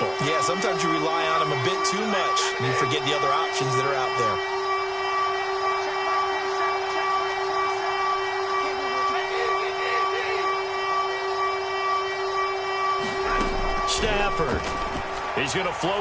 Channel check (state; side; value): identical; both; correlation 1.00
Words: Yeah, sometimes you rely on him a bit too much, and you forget the other options that are out there. Stafford. He's going to